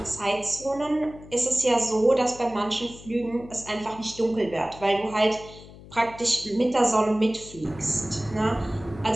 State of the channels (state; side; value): noise; left; hum, 18 dB below the sound